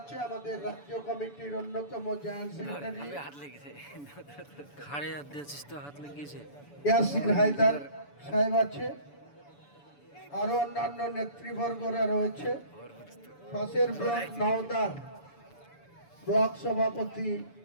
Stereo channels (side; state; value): right; late; 7.0 ms